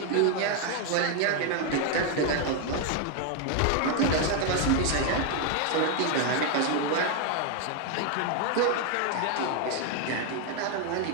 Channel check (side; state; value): both; different; correlation 0.01